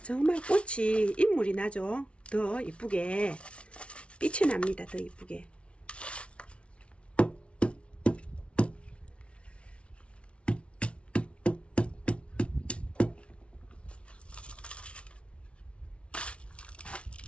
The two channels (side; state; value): right; late; 0.060 ms